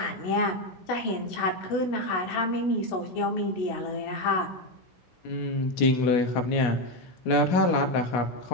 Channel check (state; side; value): late; right; 16 ms